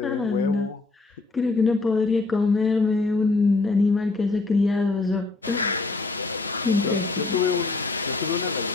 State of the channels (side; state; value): right; quieter; 3.6 dB